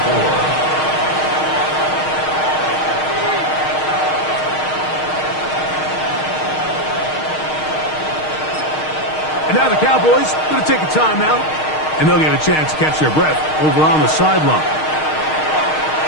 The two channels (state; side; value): late; right; 6.4 ms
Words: And now the Cowboys going to take a timeout, and they'll get a chance to catch their breath over on the sideline.